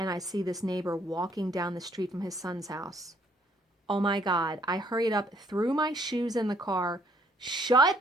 I see this neighbor walking down the street from his son's house. Oh my God. I hurried up, threw my shoes in the car,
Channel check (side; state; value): both; normal; correlation 0.66